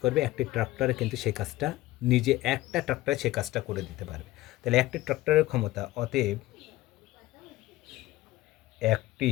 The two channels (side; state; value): right; quieter; 17.2 dB